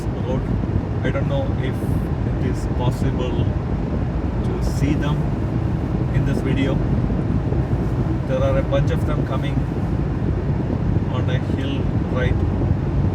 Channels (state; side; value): identical; both; correlation 1.00